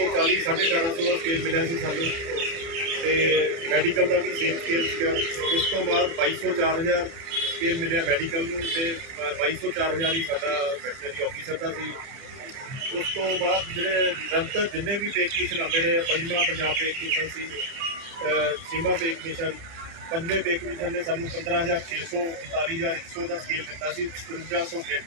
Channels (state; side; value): late; left; 30 ms